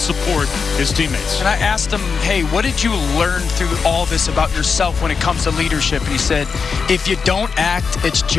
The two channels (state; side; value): quieter; right; 5.5 dB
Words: his teammates. And I asked him, hey, what did you learn through all this about yourself when it comes to leadership? And he said, if you don't act, it's